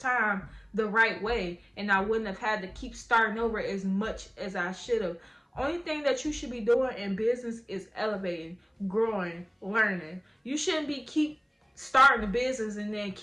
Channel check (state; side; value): identical; both; correlation 1.00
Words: the right way, and I wouldn't have had to keep starting over as much as I should have. Only thing that you should be doing in business is elevating, growing, learning. You shouldn't be keep starting a business and then